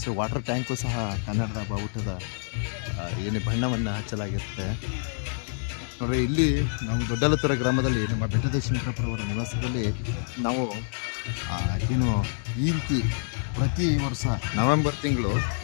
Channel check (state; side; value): silent; right; 60 dB below the other